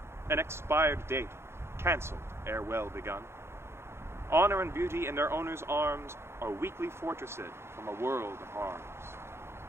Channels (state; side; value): late; left; 0.12 ms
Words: an expired date, cancelled ere well begun. Honor and beauty in their owner's arms are weakly fortressed from a world of harms.